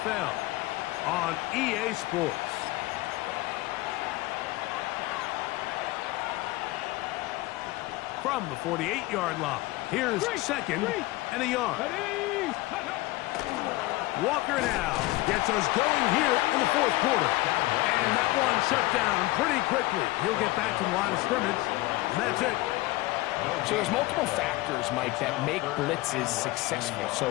on EA Sports. From the 48-yard line, here's second and a yard. Walker now gets us going here in the 4th quarter. And that one shut down pretty quickly. He'll get back to the line of scrimmage, and that's it. So there's multiple factors, Mike, that make blitzes successful.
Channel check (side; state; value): right; quieter; 19.6 dB